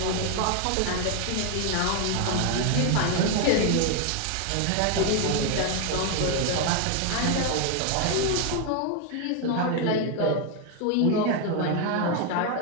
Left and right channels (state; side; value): different; both; correlation 0.01